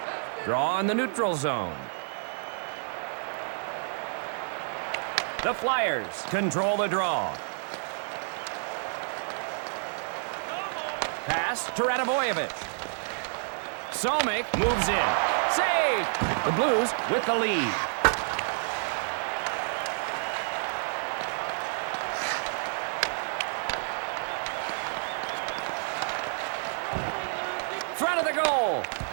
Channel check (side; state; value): left; silent; 58 dB below the other